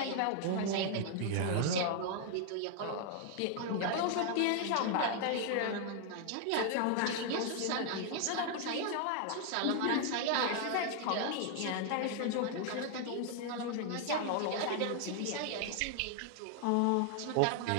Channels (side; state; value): both; different; correlation 0.00